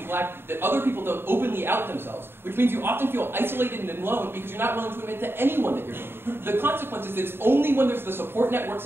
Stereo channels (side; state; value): left; late; 0.11 ms